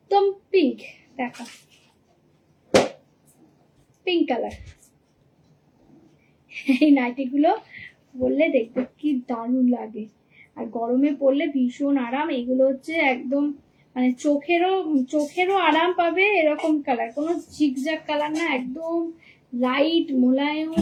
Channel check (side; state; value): both; identical; correlation 1.00